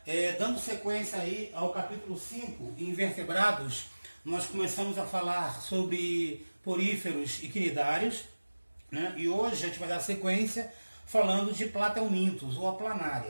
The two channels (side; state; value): both; inverted; correlation -1.00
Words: Dando sequência aí ao capítulo 5, Invertebrados, nós começamos a falar sobre poríferos e quinidários, né? E hoje a gente vai dar sequência falando de platelmintos ou a